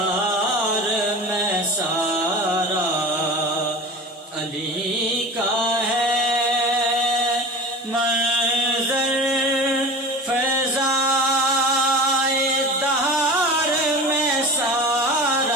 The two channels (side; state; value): both; normal; correlation 0.34